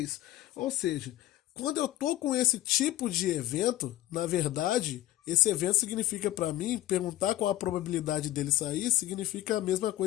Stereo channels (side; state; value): right; quieter; 14.8 dB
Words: Ou seja, quando eu tô com esse tipo de evento, na verdade, esse evento significa para mim, perguntar qual a probabilidade dele sair, significa a mesma